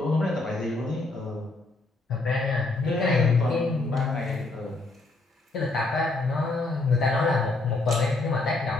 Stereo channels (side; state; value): right; quieter; 3.2 dB